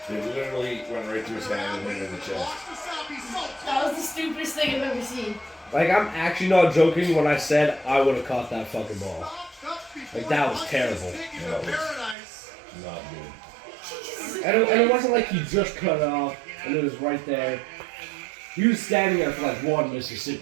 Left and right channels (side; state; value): left; drops out; at 12.2 s